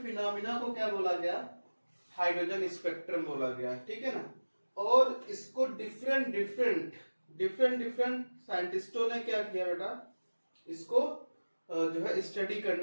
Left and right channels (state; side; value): inverted; both; correlation -1.00